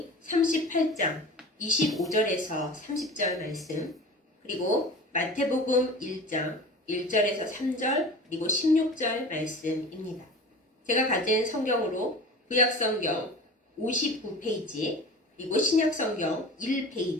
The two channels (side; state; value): both; normal; correlation 0.37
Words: 38장 25절에서 30절 말씀, 그리고 마태복음 1장 1절에서 3절, 그리고 16절 말씀입니다. 제가 가진 성경으로 구약성경 59페이지, 그리고 신약성경